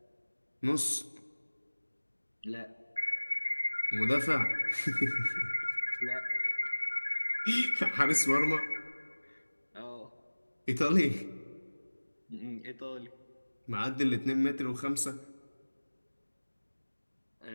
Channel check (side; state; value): both; inverted; correlation -1.00